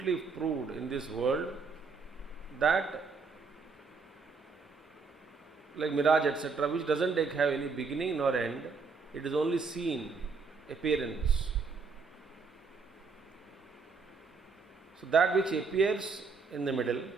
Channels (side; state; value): left; quieter; 4.8 dB